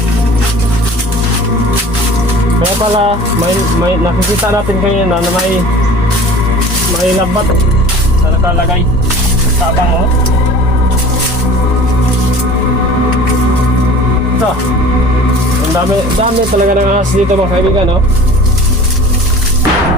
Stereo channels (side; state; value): both; normal; correlation 0.43